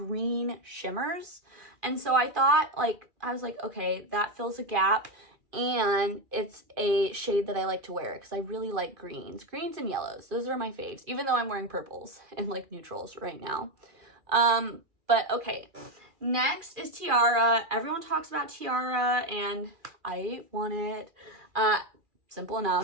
shimmers. And so I thought, like, I was like, okay, that fills a gap, and it's a shade that I like to wear because I really like greens and yellows. Those are my faves, even though I'm wearing purples and like neutrals right now. But okay. Next is Tiara. Everyone talks about Tiara and I want it. Simple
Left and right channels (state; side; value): late; left; 2.3 ms